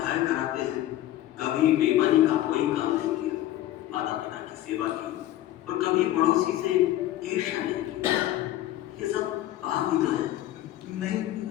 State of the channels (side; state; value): right; quieter; 14.0 dB